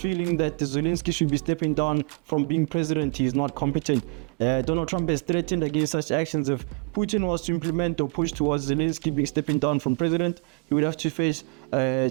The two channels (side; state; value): left; quieter; 35.0 dB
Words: that Zelensky should be stepping down from being president. He's not competent. Donald Trump has threatened against such actions. If Putin was to implement or push towards Zelensky stepping down from president, he would have to face